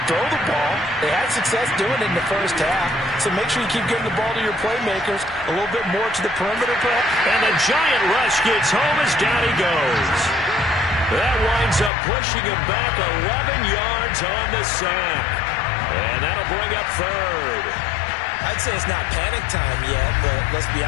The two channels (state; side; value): drops out; right; at 11.9 s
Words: Throw the ball. They had success doing it in the first half, so make sure you keep getting the ball to your playmakers a little bit more to the perimeter. And the giant rush gets home as down he goes. That winds up pushing him back 11 yards on the sack. And that'll bring up third. I'd say it's not panic time yet, but let's be